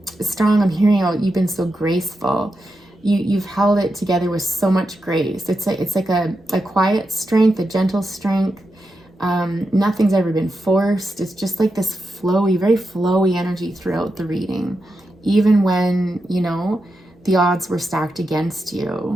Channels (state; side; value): normal; both; correlation 0.88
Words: strong. I'm hearing out, you've been so graceful. You've held it together with so much grace. It's like a quiet strength, a gentle strength. Nothing's ever been forced. It's just like this flowy, very flowy energy throughout the reading, even when, you know, the odds were stacked against